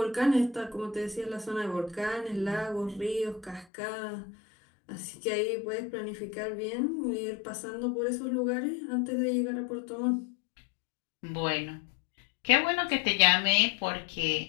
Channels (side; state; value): right; drops out; at 3.7 s